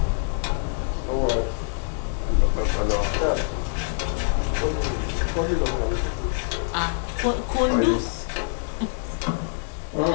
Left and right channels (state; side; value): silent; right; digital silence